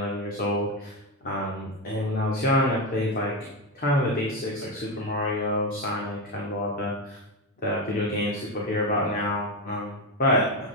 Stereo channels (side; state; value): both; normal; correlation 0.13